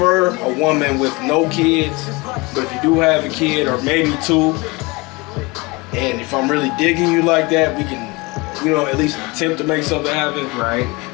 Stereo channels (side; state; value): right; quieter; 24.9 dB